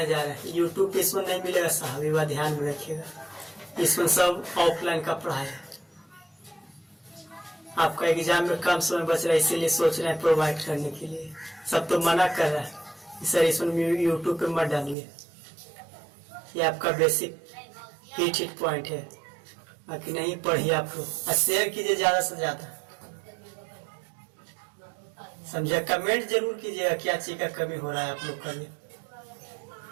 जा रहे हैं। यूट्यूब पे इसमें नहीं मिलेगा साहब, ये बात ध्यान में रखिएगा, इसमें सब ऑफलाइन का पढ़ाई है। आपका एग्जाम में कम समय बच रहा है, इसीलिए सोच रहे हैं प्रोवाइड करने के लिए। सब तो मना कर रहा है सर, इसमें यूट्यूब पे मत डालिए, ये आपका बेसिक हिट पॉइंट है। बाकी नहीं पढ़िए आप लोग, और शेयर कीजिए ज्यादा से ज्यादा, समझे। कमेंट जरूर कीजिएगा क्या चीज का कमी हो रहा है आप लोग का, लिए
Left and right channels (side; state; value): left; drops out; at 15.0 s